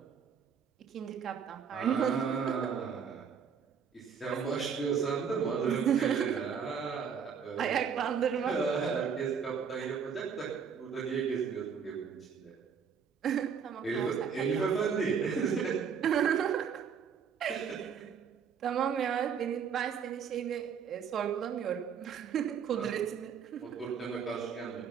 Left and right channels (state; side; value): quieter; left; 6.9 dB